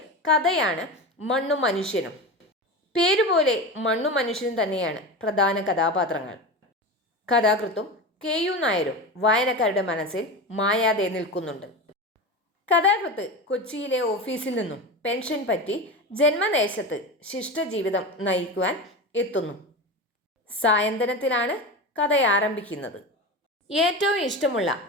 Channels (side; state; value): both; normal; correlation 0.25